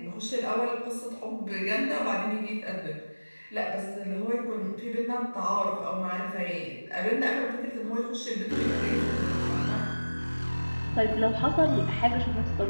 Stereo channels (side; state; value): both; inverted; correlation -1.00